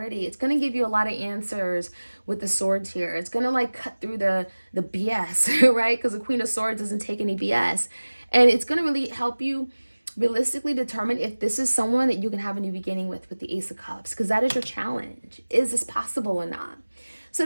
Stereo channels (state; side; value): inverted; both; correlation -1.00